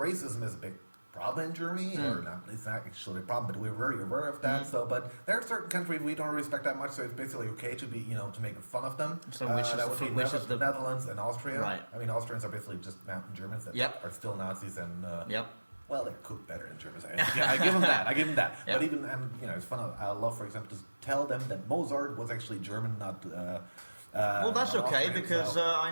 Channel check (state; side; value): inverted; both; correlation -1.00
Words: is a big problem in Germany, or not? It's not actually a problem, but we're very aware of that. So, but there are certain countries we don't respect that much. So it's basically okay to be, to make fun of them. So which is the Netherlands and Austria? Right. Austrians are basically just mountain Germans that are still Nazis and. Well, they're cooked better in Germany. I give them that. But even, it's fun. I love, for example, to tell them that Mozart was actually German, not. Well, that's okay because